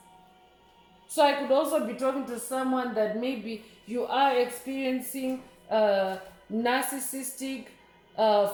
So I could also be talking to someone that maybe you are experiencing narcissistic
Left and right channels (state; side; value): identical; both; correlation 1.00